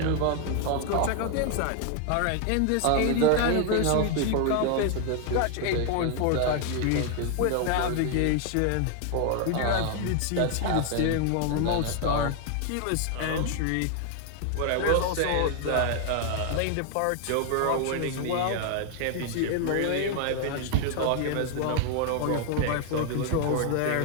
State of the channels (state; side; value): different; both; correlation 0.00